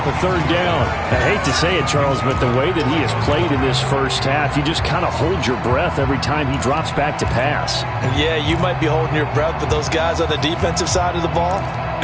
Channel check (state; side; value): identical; both; correlation 1.00